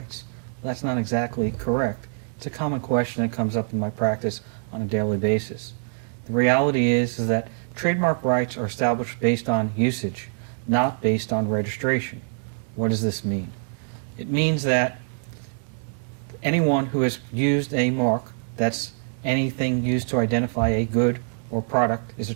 That's not exactly correct. It's a common question that comes up in my practice on a daily basis. The reality is that trademark rights are established based on usage, not based on registration. What does this mean? It means that anyone who has used a mark, that's anything used to identify a good or product, is a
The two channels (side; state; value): left; silent; digital silence